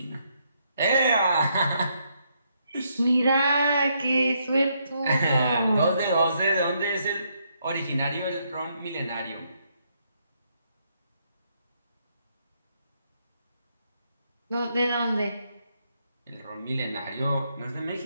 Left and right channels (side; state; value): both; inverted; correlation -0.75